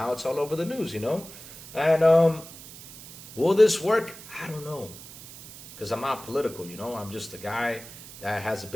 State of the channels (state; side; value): noise; right; hiss, 16 dB below the sound